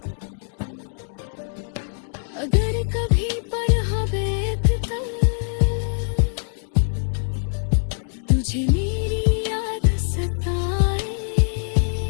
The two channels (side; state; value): right; silent; digital silence